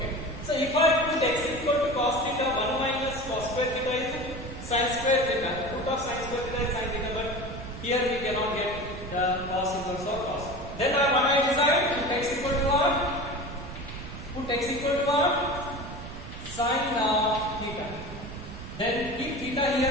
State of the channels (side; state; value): right; noise; rumble, 10 dB below the sound